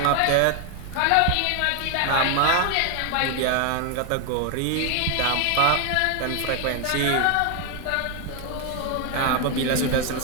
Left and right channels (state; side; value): different; both; correlation 0.01